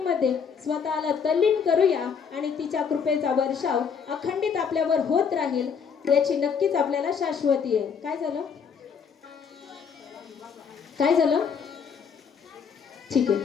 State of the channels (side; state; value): right; quieter; 6.5 dB